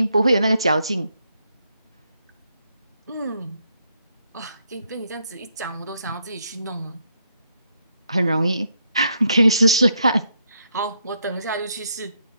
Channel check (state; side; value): inverted; both; correlation -0.76